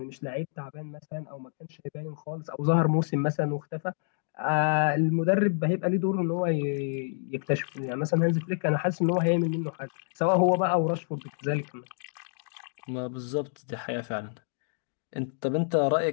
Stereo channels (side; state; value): right; silent; digital silence